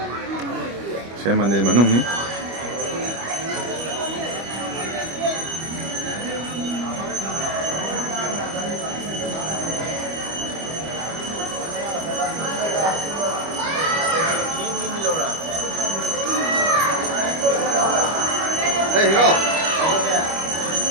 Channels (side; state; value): left; late; 25 ms